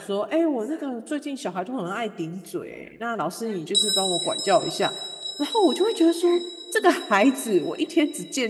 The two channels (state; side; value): identical; both; correlation 1.00